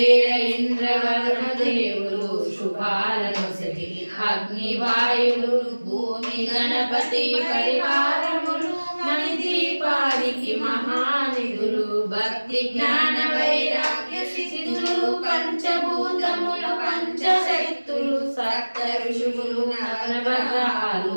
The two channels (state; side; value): inverted; both; correlation -1.00